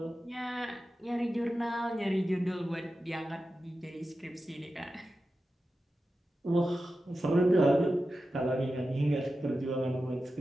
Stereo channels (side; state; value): both; normal; correlation 0.92